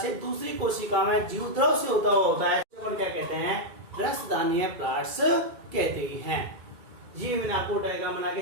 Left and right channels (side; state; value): left; late; 2.3 ms